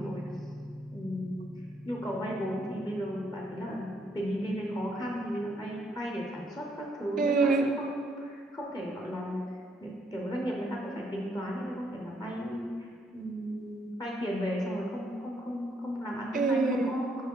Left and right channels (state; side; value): normal; both; correlation 0.72